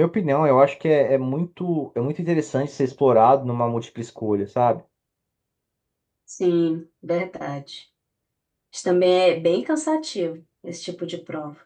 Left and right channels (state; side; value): identical; both; correlation 1.00